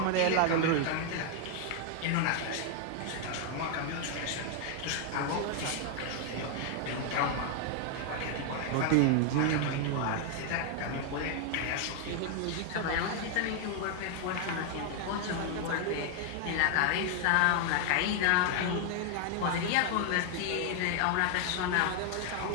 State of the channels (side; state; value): both; different; correlation 0.00